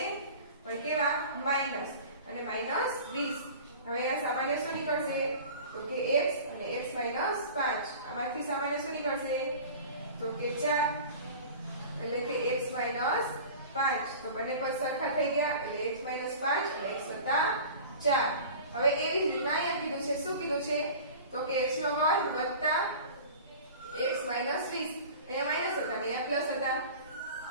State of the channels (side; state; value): both; inverted; correlation -0.39